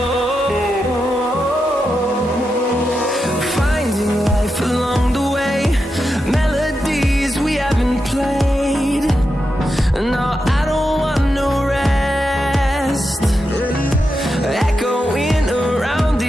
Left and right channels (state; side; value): normal; both; correlation 0.88